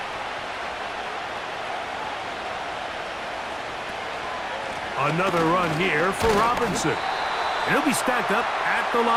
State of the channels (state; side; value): identical; both; correlation 1.00